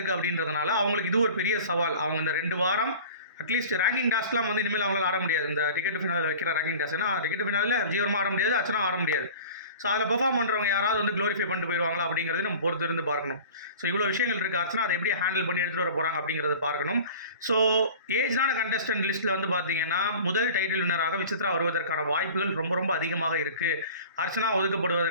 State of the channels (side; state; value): both; inverted; correlation -0.40